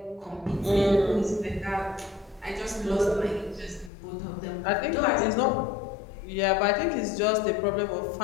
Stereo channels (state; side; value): drops out; right; at 3.9 s